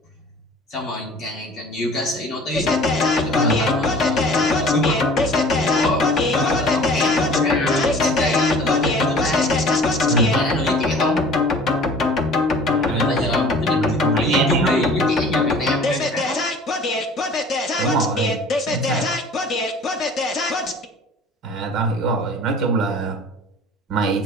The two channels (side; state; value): both; normal; correlation 0.46